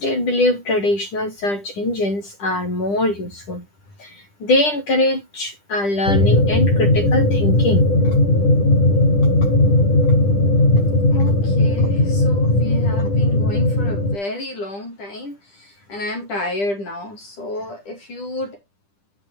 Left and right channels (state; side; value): late; right; 10 ms